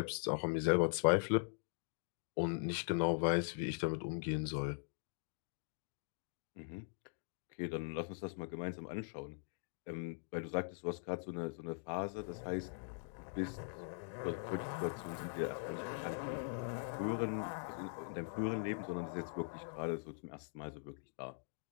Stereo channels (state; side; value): silent; right; digital silence